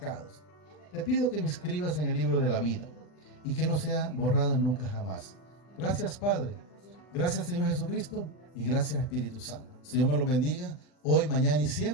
Te pido que me inscribas en el libro de la vida y que no sea borrada nunca jamás. Gracias, Padre. Gracias, Señor Jesucristo, y gracias, Espíritu Santo. Señor me lo bendiga hoy, mañana y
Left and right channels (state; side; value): late; right; 40 ms